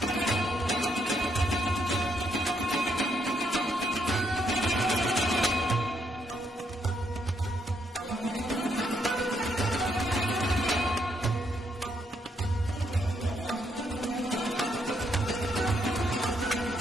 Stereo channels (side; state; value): both; normal; correlation 0.75